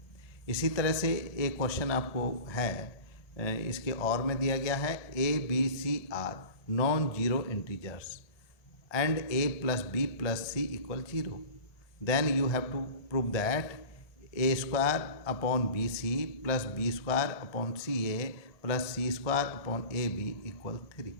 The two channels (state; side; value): late; right; 1.7 ms